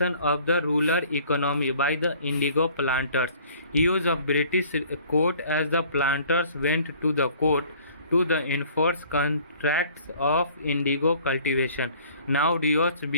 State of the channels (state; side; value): inverted; both; correlation -0.53